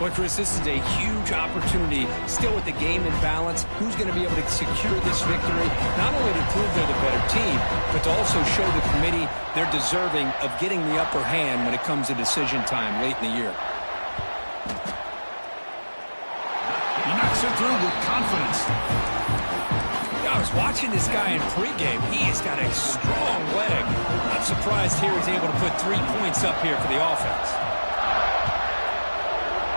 Well, Chris, this is a huge opportunity. Still with the game in balance, who's going to be able to secure this victory, not only to prove they're the better team, but to also show the committee they're deserving of getting the upper hand when it comes to decision time late in the year. He knocks it through with confidence. I was watching this guy in pregame. He has got a strong leg. Not surprised here he's able to put 3 points up here for the offense.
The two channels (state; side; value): inverted; both; correlation -1.00